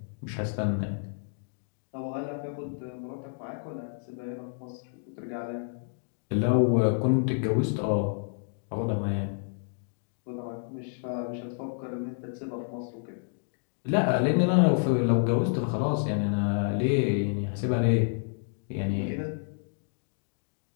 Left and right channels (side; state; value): right; silent; digital silence